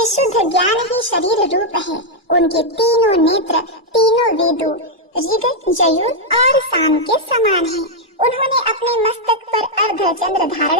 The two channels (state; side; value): normal; both; correlation -0.02